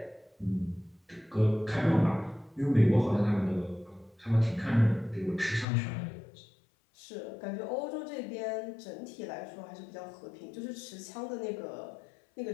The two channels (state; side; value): drops out; right; at 5.7 s